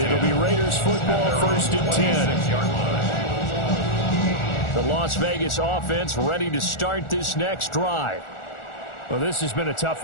it'll be Raiders football, 1st and 10. The Las Vegas offense ready to start this next drive. Well, this has been a tough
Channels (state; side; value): late; right; 1.4 ms